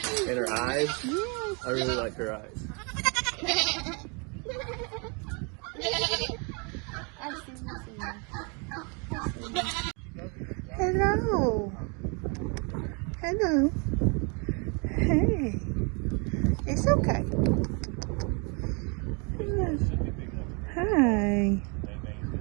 And her eyes, I really like her eyes. Hello. Hello. Hey. It's okay. Hi.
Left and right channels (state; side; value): quieter; left; 33.7 dB